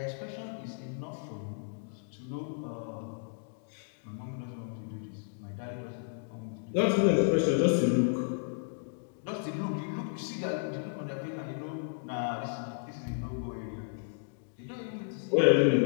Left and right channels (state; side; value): silent; right; digital silence